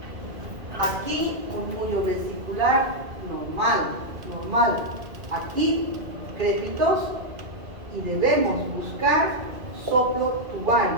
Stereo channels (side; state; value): left; late; 2.2 ms